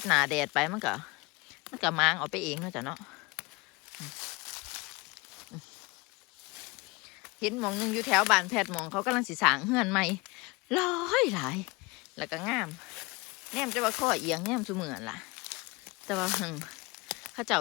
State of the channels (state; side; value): quieter; right; 25.2 dB